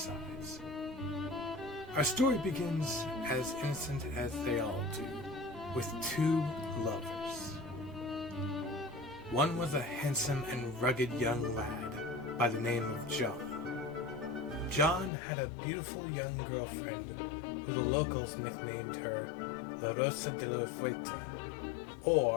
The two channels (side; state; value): right; drops out; at 15.1 s